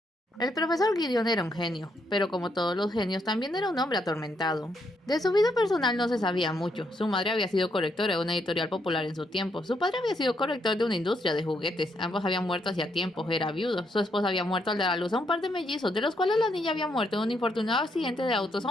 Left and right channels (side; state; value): both; normal; correlation 0.76